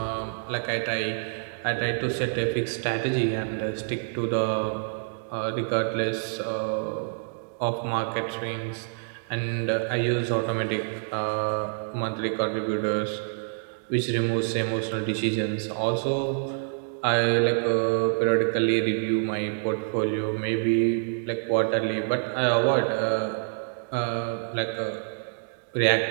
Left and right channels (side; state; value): left; silent; digital silence